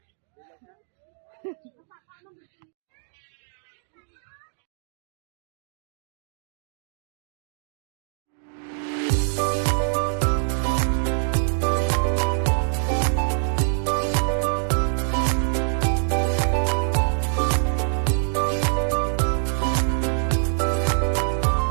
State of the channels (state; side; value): silent; left; digital silence